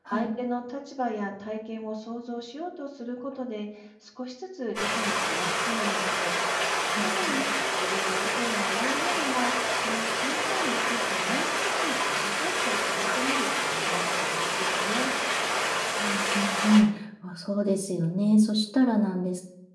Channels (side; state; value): both; identical; correlation 1.00